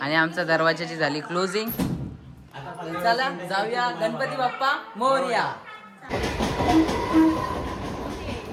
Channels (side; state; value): both; identical; correlation 1.00